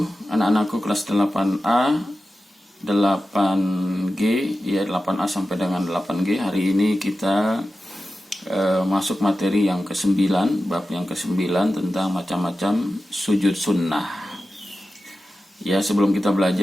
Anak-anakku kelas 8A, 8G, ya 8A sampai dengan 8G. Hari ini kita masuk materi yang ke-9, bab yang ke-9 tentang macam-macam sujud sunnah. Ya, sebelum kita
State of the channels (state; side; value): normal; both; correlation 0.93